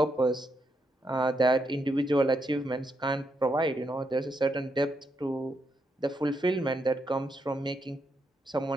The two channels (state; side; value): normal; both; correlation 0.80